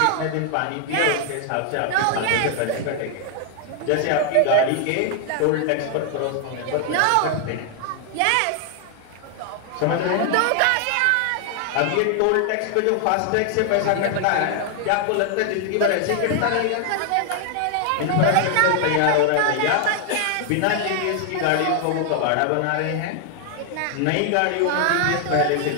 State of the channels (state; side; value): different; both; correlation 0.00